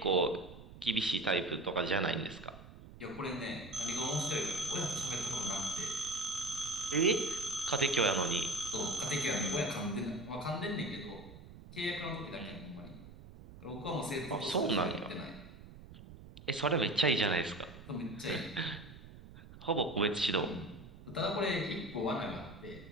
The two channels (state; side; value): noise; right; rumble, 17 dB below the sound